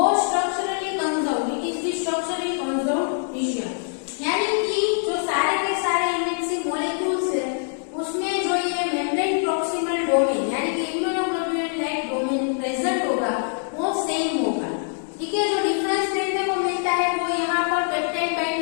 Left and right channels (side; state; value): right; silent; 63 dB below the other